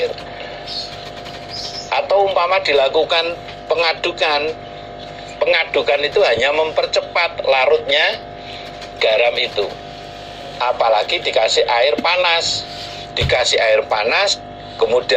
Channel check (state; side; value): identical; both; correlation 1.00